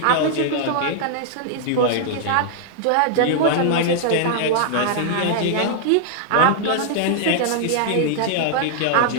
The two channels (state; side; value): different; both; correlation -0.01